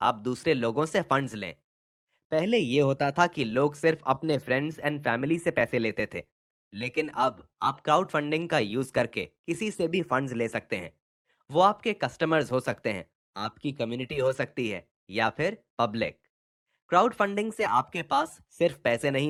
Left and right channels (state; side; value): identical; both; correlation 1.00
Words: आप दूसरे लोगों से फंड्स लें। पहले ये होता था कि लोग सिर्फ अपने फ्रेंड्स एंड फैमिली से पैसे लेते थे, लेकिन अब आप क्राउड फंडिंग का यूज करके किसी से भी फंड्स ले सकते हैं। वो आपके कस्टमर्स हो सकते हैं, आपकी कम्युनिटी हो सकती है, या फिर पब्लिक। क्राउड फंडिंग से आपके पास सिर्फ पैसे